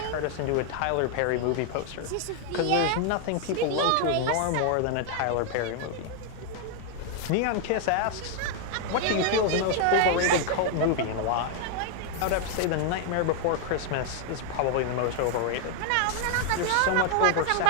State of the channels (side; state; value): both; different; correlation 0.00